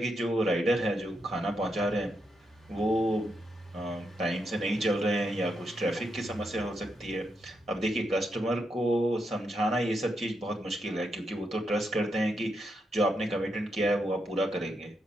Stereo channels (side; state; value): both; normal; correlation 0.82